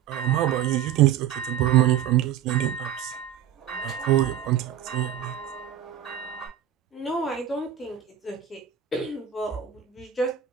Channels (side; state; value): left; quieter; 10.2 dB